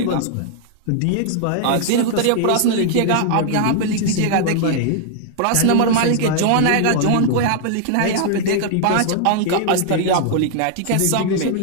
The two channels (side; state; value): both; different; correlation -0.01